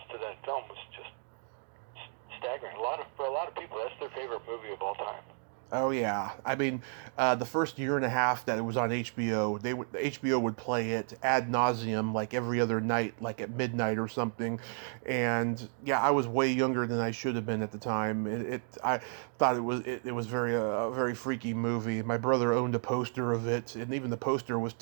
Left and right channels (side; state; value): left; silent; 56 dB below the other